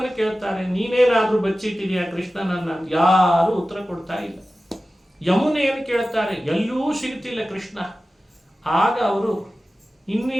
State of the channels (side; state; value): both; normal; correlation 0.95